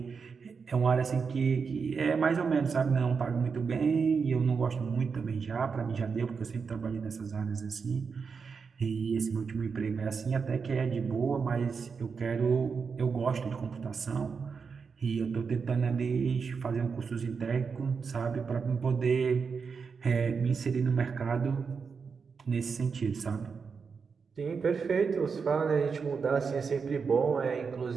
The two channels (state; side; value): quieter; left; 5.5 dB